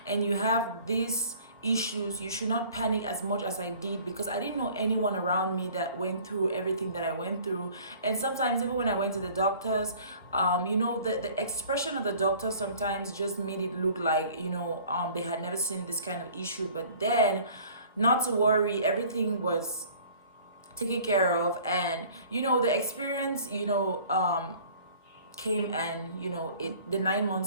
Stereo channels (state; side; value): inverted; both; correlation -0.51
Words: and you have these issues, you should not panic as much as I did, because I didn't know anyone around me that went through everything that I went through. And sometimes even when I went to the doctors, the expression of the doctor sometimes just made it look like, they had never seen this kind of issue. But then, not to worry, everything was taken care of. And the experience came, and the 9